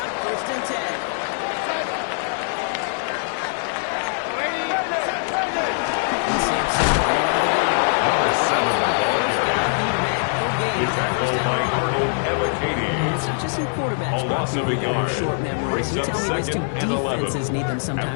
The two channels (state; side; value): silent; right; digital silence